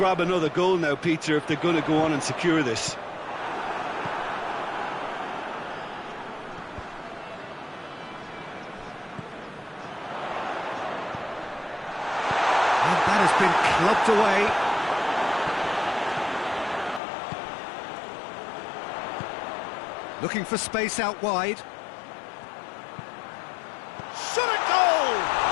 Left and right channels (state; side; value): drops out; right; at 17.0 s